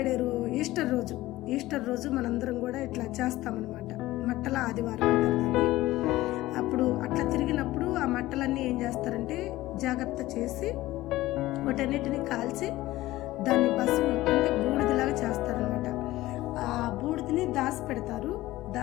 ఈస్టర్ రోజు మనందరం కూడా ఇట్లా చేస్తామన్నమాట. మట్టల ఆదివారం అంటారు దాన్ని. అప్పుడు అట్లా తిరిగినప్పుడు ఆ మట్టలన్నీ ఏం చేస్తారంటే జాగ్రత్త చేసి వాటన్నిటిని కాల్చి దాన్ని భస్మం అంటే బూడిదలాగా చేస్తారనమాట. ఆ బూడిదని దాచిపెడతారు.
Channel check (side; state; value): right; quieter; 17.0 dB